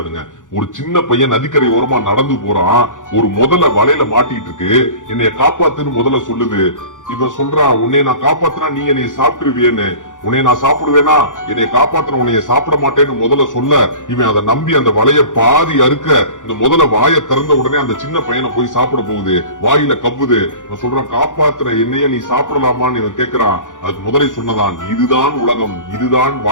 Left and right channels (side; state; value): right; late; 0.87 ms